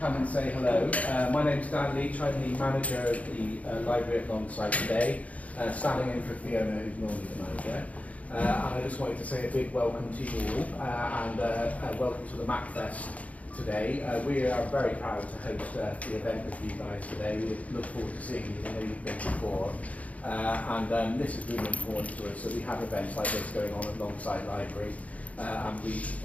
come and say hello. My name's Dan Leach. I'm the manager of the library at Longside today, standing in for Fiona, who's normally the manager. And I just wanted to say a big welcome to you all, and welcome to the Macfest today. We are very proud to host the event with you guys today. We look forward to seeing you. I know you've been before. And this is really important to us, so we have events like this going on alongside library, and we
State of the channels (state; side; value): late; right; 0.068 ms